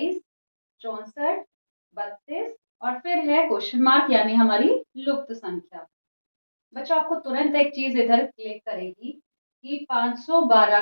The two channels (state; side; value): inverted; both; correlation -1.00